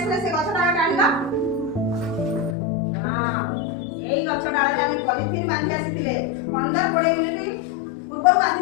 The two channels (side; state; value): right; drops out; at 2.6 s